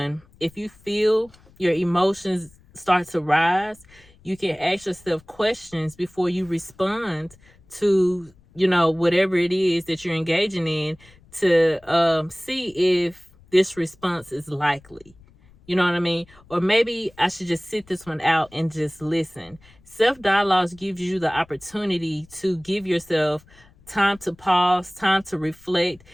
if you feel your emotions start to rise, you can ask yourself questions before you respond to, whatever it is that you're engaging in, to see if this response is likely. You know what I mean? Or maybe I should just sit this one out and just listen. Self dialogues gives you the opportunity to give yourself time to pause, time to reflect,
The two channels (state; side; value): noise; left; rumble, 27 dB below the sound